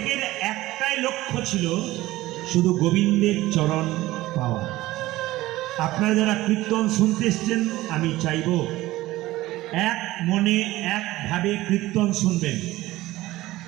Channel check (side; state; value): left; quieter; 17.3 dB